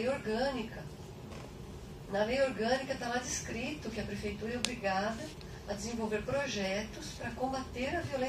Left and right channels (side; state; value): both; identical; correlation 1.00